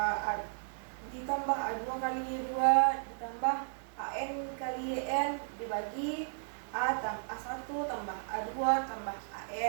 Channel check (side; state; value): left; silent; digital silence